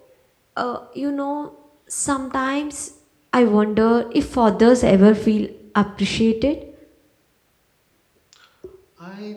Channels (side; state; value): both; identical; correlation 1.00